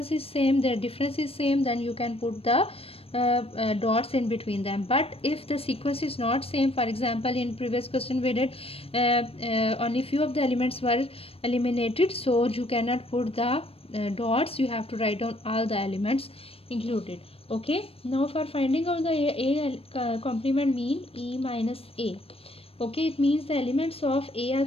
is same, the difference is same, then you can put the dots in between them. But if the sequence is not same, for example in previous question we did only few of the elements were eliminated, so you cannot put the dots, you have to write down all the elements included. Okay, now for finding out the A complement mean E minus A. Okay, it means the elements of A are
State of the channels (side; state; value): right; late; 0.28 ms